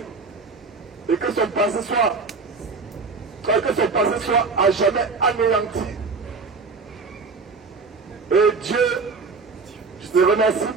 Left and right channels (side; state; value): left; quieter; 4.4 dB